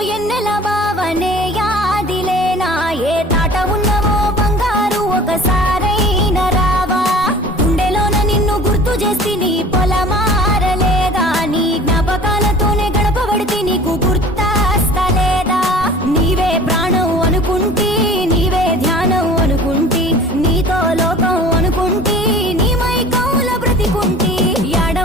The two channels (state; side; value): normal; both; correlation 0.44